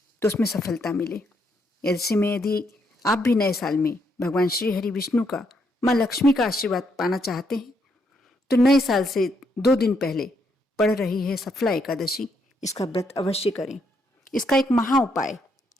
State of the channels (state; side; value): normal; both; correlation 0.75